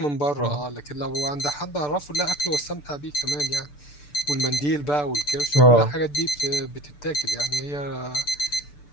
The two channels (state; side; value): late; right; 6.8 ms